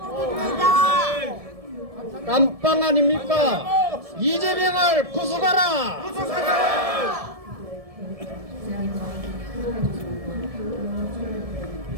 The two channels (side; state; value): left; late; 1.7 ms